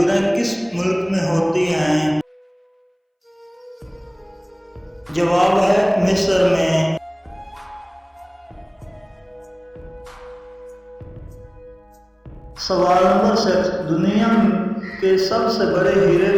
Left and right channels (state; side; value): identical; both; correlation 1.00